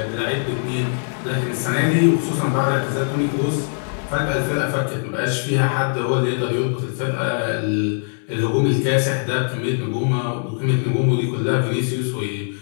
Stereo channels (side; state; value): right; silent; digital silence